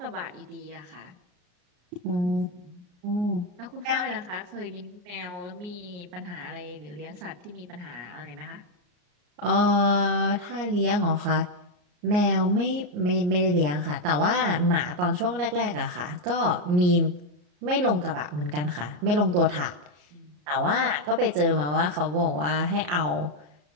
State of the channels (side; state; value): left; late; 33 ms